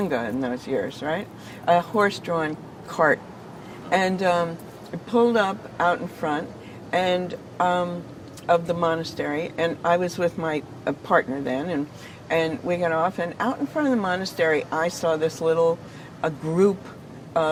in those years, right? A horse-drawn cart, and it pulled up out in front, and of the monastery, and I was with my partner then, and we got off, and out in front of the monastery, I saw this a group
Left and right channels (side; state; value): both; identical; correlation 1.00